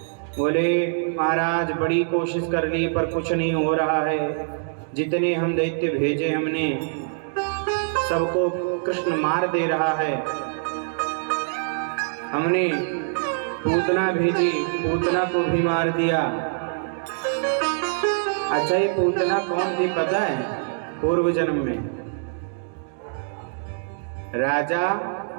बोले महाराज बड़ी कोशिश कर ली पर कुछ नहीं हो रहा है। जितने हम दैत्य भेजे हमने सबको कृष्ण मार दे रहा है। हमने पूतना भेजी, पूतना को भी मार दिया। अच्छा ये पूतना कौन थी पता है? पूर्व जन्म में राजा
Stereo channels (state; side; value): silent; left; digital silence